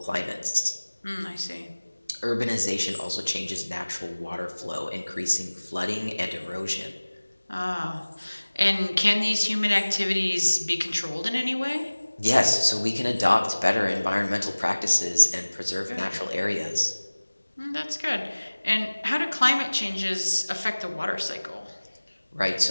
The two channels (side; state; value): both; inverted; correlation -1.00